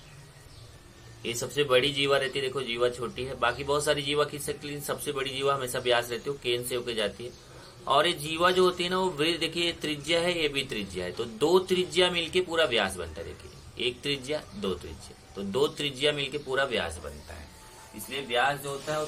ये सबसे बड़ी जीवा रहती है, देखो जीवा छोटी है, बाकी बहुत सारी जीवा खींच सकती है, लेकिन सबसे बड़ी जीवा हमेशा व्यास रहती है, केंद्र से होकर जाती है। और ये जीवा जो होती है ना वो वृत्त, देखिए ये त्रिज्या है, ये भी त्रिज्या है, तो दो त्रिज्या मिलके पूरा व्यास बनता है। देखिए एक त्रिज्या दो त्रिज्या, तो दो त्रिज्या मिलके पूरा व्यास बनता है। इसलिए व्यास जो होता है वो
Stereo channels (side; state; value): both; identical; correlation 1.00